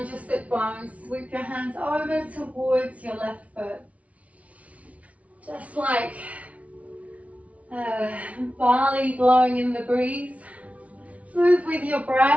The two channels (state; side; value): late; left; 0.067 ms